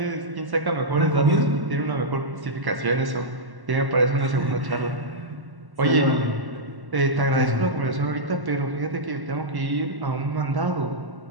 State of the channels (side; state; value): left; late; 1.1 ms